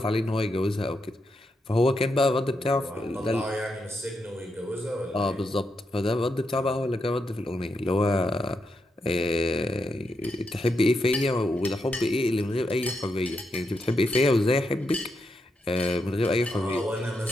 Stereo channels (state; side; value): normal; both; correlation 0.83